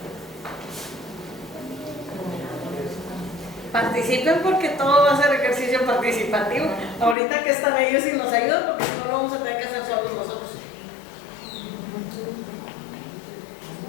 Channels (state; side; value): drops out; right; at 7.2 s